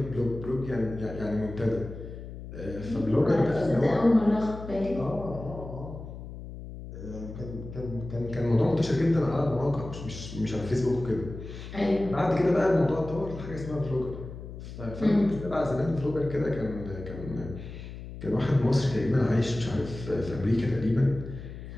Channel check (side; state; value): left; noise; hum, 11 dB below the sound